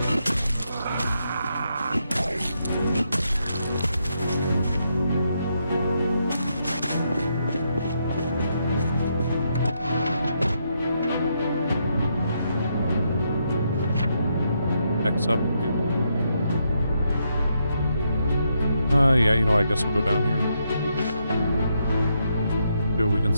X up. Yeah, you know, I guess we'll go down here. See what we can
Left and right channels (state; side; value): inverted; both; correlation -0.79